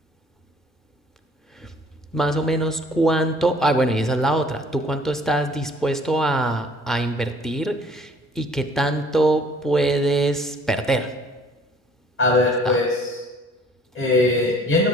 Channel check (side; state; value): both; normal; correlation 0.55